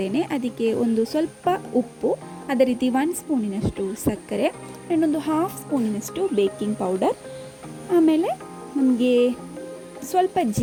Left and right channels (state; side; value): identical; both; correlation 1.00